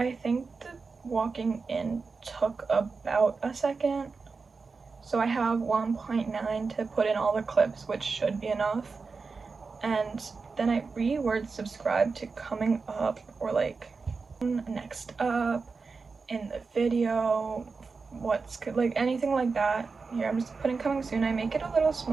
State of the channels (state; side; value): quieter; left; 4.6 dB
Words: think the walking in took about a second. So I have 1.9 to put in all the clips, which should be enough. And then I reword subscribe to coming up, or like next up in the video, what's good, like anything like that. Here I'm just putting coming soon. I make it a little